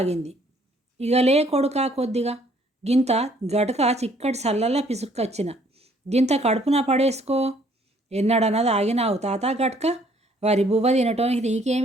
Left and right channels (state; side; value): normal; both; correlation 0.62